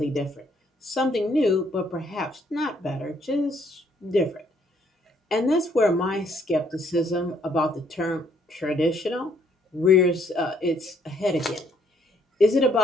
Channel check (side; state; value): both; normal; correlation 0.67